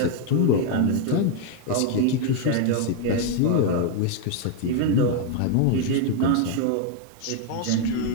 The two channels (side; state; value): both; different; correlation 0.00